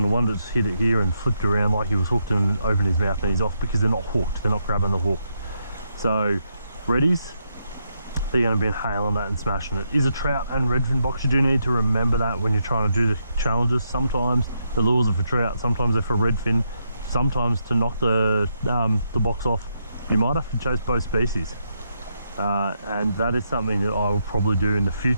one that's hit it here and flipped around like he was hooked and opened his mouth, and he's off because they're not hooked, they're not grabbing the hook. So reddies, they're going to be inhaling that and smashing it. Is a trout and redfin box. You do need to remember that when you're trying to do the challenges. Sometimes the lures are for trout, sometimes they're for redfin, sometimes to knock the box off you might have to chase both species, and that is something that I will probably do in the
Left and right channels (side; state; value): both; inverted; correlation -0.80